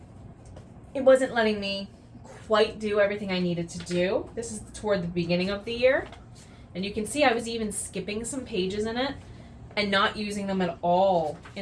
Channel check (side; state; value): both; identical; correlation 1.00